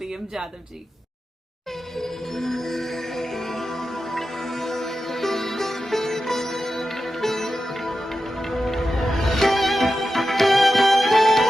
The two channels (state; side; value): normal; both; correlation 0.91